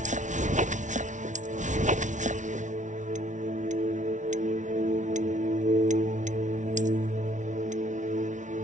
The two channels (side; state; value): left; late; 0.36 ms